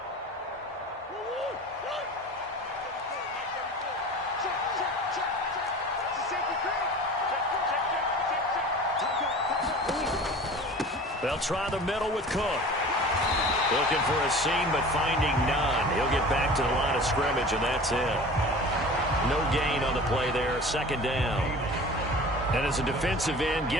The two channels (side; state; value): both; normal; correlation 0.40